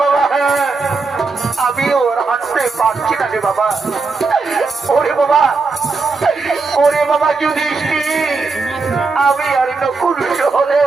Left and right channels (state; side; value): quieter; left; 4.2 dB